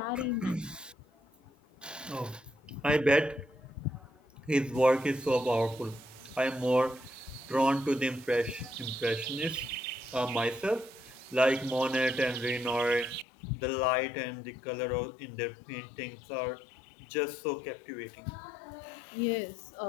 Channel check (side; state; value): right; drops out; at 13.2 s